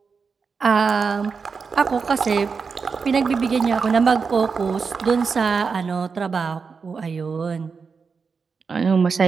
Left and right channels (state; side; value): quieter; left; 5.3 dB